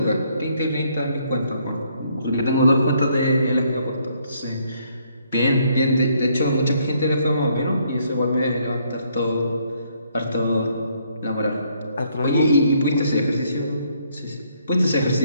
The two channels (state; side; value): inverted; both; correlation -0.69